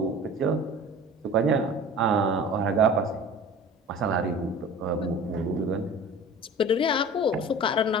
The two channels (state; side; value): normal; both; correlation 0.40